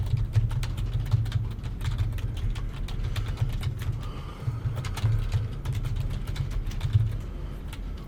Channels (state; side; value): identical; both; correlation 1.00